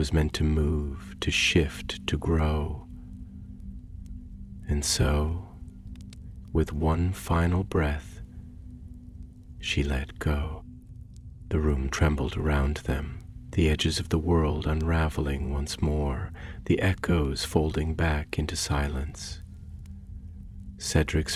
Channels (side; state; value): both; identical; correlation 1.00